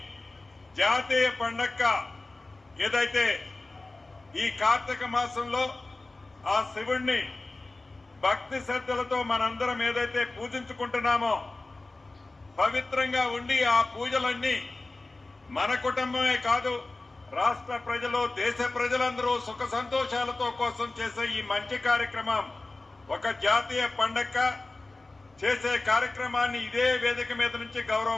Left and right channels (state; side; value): quieter; right; 3.1 dB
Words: జాతీయ పండగ ఏదైతే ఈ కార్తీక మాసంలో ఆ శివుణ్ణి భక్తి శ్రద్ధలతో మనందరం ఏదైతే పూజించుకుంటున్నామో పవిత్రంగా ఉండి ఆ పూజలన్నీ మన కుటుంబమే కాదు రాష్ట్ర ప్రజలు దేశ ప్రజలందరూ సుఖ సంతోషాలతో కోసం చేసే ఈ మంచి కార్యక్రమం ఒక జాతీయ పండగ చేసే కార్యక్రమాన్ని ఇదే వేదిక మీద నుంచి గౌరవ